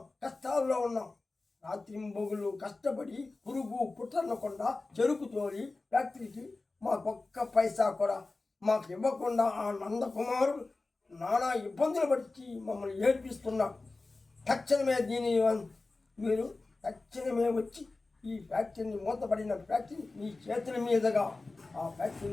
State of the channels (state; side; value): quieter; right; 3.4 dB